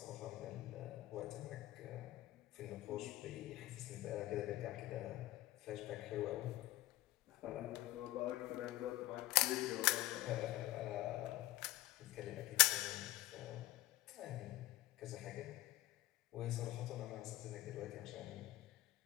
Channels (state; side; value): quieter; right; 17.3 dB